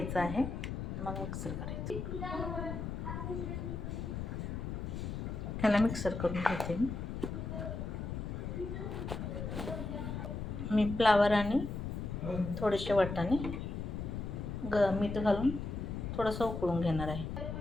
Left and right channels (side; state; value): left; noise; rumble, 4 dB below the sound